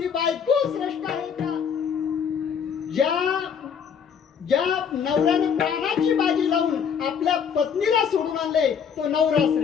बायको श्रेष्ठ आहे का. ज्या नवऱ्याने प्राणाची बाजी लावून आपल्या पत्नीला सोडून आणले तो नवरा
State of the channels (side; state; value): right; quieter; 7.2 dB